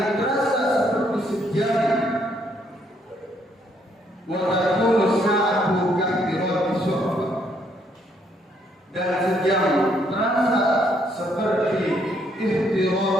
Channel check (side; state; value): both; normal; correlation 0.70